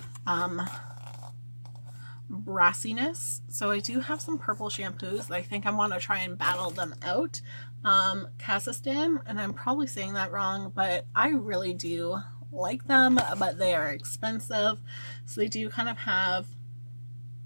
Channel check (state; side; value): inverted; both; correlation -1.00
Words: brassiness. So I do have some purple shampoos that I think I want to try and battle them out. Kazakhstan, and I'm probably saying that wrong, but I really do like them, but they are expensive. So they do kind of have